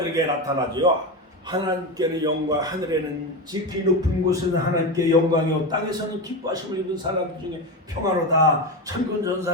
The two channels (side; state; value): both; normal; correlation 0.18